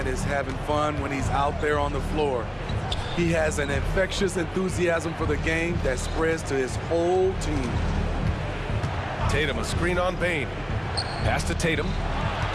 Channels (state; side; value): identical; both; correlation 1.00